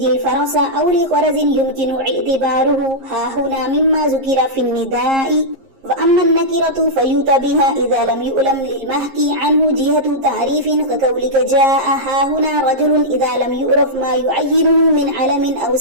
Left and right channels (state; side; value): late; left; 11 ms